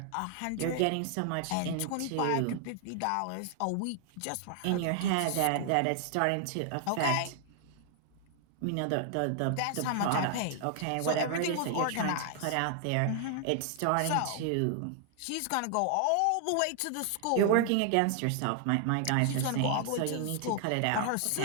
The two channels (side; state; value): both; different; correlation 0.00